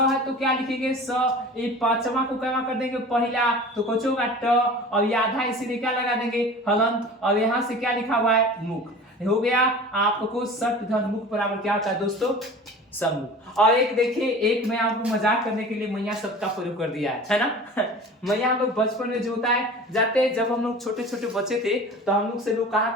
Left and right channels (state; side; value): normal; both; correlation 0.39